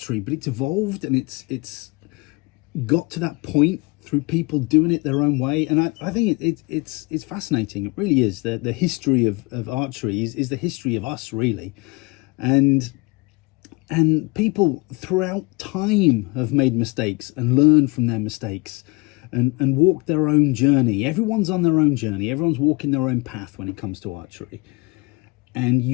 but it's evolved, and it's got to that point through people doing it their own way. And I think it's fascinating. It really is. The history of archery is the history of us, really. And people throughout time have made mistakes and learned from their mistakes and walked their own journey. Everyone's on their own journey. Everyone's walking their own path when it comes to archery. And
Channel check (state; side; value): quieter; right; 26.3 dB